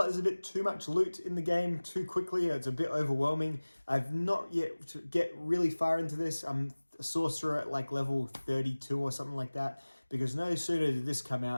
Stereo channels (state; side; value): inverted; both; correlation -1.00